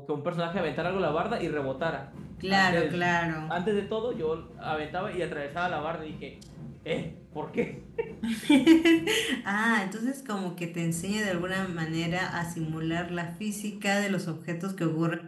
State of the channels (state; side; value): identical; both; correlation 1.00